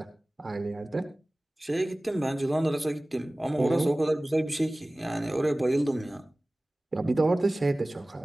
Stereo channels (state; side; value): normal; both; correlation 0.98